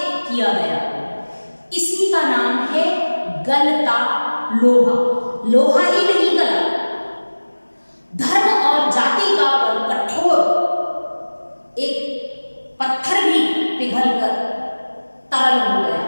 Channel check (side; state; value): both; inverted; correlation -1.00